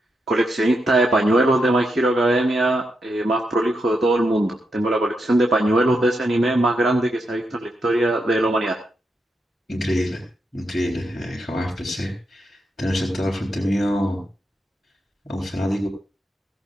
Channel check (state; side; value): normal; both; correlation 0.84